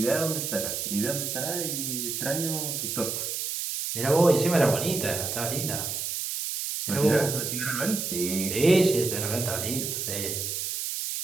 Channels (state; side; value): noise; right; hiss, 3 dB below the sound